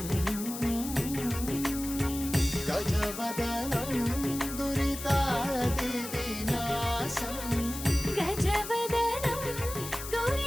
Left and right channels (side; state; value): left; noise; hiss, 9 dB below the sound